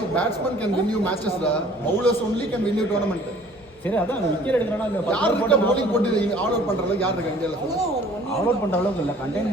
batsman can win you matches, bowlers only can win you tournament. சரி, அதான் விக்கெட் எடுக்கறனா இல்ல, யார் போட்டு bowling போட்டு ஆல் அவுட் பண்ற அளவுக்கு யார் இருக்கா இந்தியால? ஆல் அவுட் பண்ற அளவுக்கு இல்ல, கண்டெயின்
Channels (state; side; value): normal; both; correlation 0.53